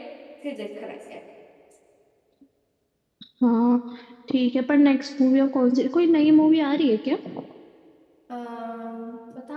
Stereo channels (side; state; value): both; identical; correlation 1.00